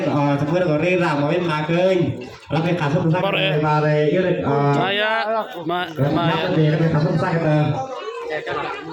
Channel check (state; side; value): identical; both; correlation 1.00